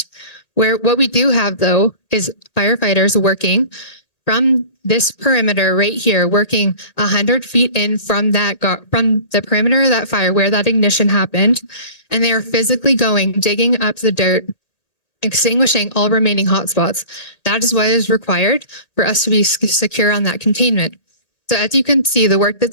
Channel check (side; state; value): right; late; 2.0 ms